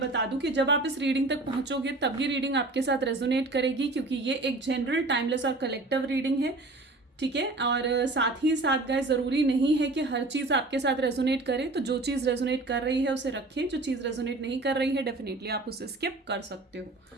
दूं कि जब आप इस रीडिंग तक पहुंचोगे तब ये रीडिंग आपके साथ रेजोनेट करेगी, क्योंकि ये एक जनरल, टाइमलेस और कलेक्टिव रीडिंग है। ठीक है, और साथ ही साथ गाइज ज़रूरी नहीं है कि हर चीज़ आपके साथ रेजोनेट करे, तो जो चीज़ रेजोनेट कर रही है उसे रखें, जो चीज़ रेजोनेट नहीं कर रही है डेफिनेटली आप उसे स्किप कर सकते हो।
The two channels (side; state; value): left; quieter; 3.0 dB